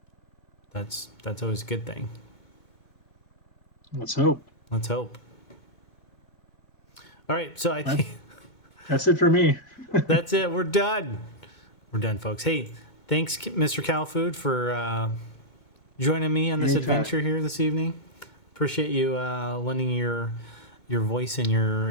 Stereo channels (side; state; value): right; late; 2.2 ms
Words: that's always a good thing. So, Let's hope. All right, so I think that's it for me. that's it. We're done. We're done, folks. Hey, thanks, MrCowFood, for joining me on this adventure here this evening. Appreciate you lending your voice and your